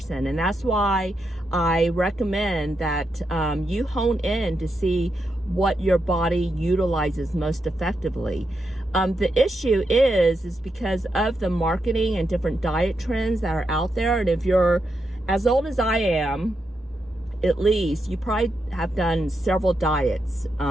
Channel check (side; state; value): both; normal; correlation 0.84